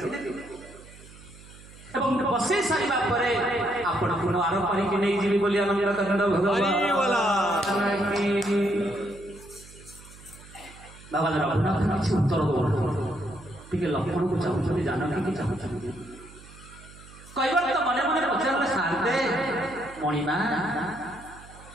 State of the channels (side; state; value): right; noise; hum, 20 dB below the sound